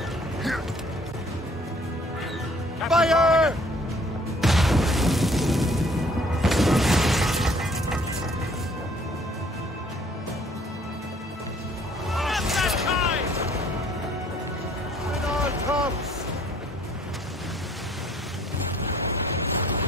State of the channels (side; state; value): both; normal; correlation 0.59